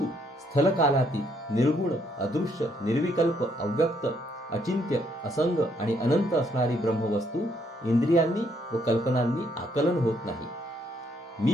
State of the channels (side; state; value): both; normal; correlation 0.71